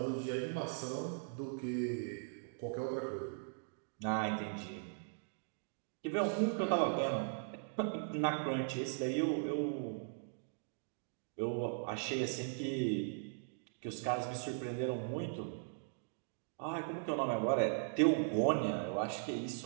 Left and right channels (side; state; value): left; silent; digital silence